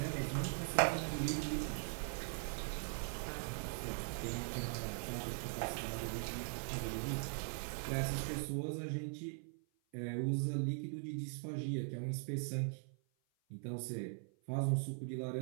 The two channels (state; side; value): silent; left; 50 dB below the other